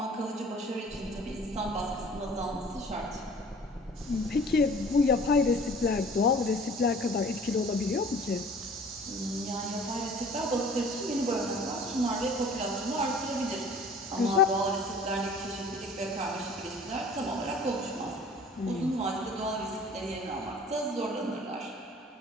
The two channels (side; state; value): both; normal; correlation 0.48